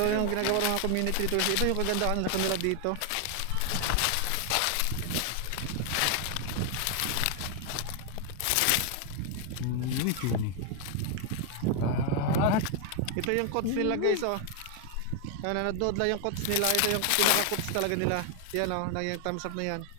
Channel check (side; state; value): both; different; correlation 0.00